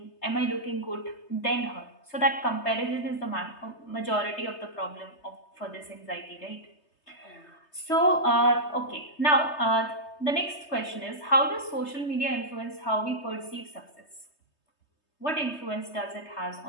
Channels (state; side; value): late; right; 3.3 ms